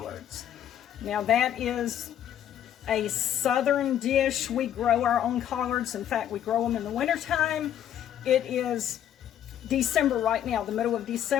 Now that is a southern dish. We grow our own collards. In fact, we grow them in the wintertime. It is December right now, the middle of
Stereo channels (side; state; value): right; quieter; 10.4 dB